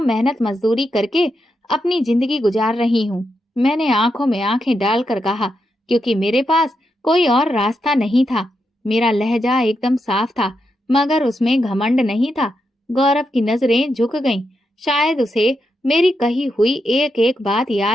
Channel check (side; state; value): both; normal; correlation 0.84